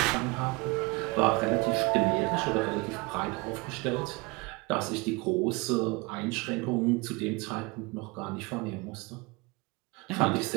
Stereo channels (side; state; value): left; quieter; 26.5 dB